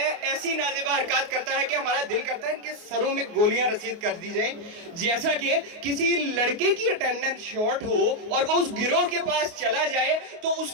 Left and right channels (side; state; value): left; late; 28 ms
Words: है कि हमारा दिल करता है इनके सरों में गोलियां रसीद कर दी जाए। जैसा कि किसी लड़के की अटेंडेंस शॉर्ट हो और वो उस गिरोह के पास चला जाए तो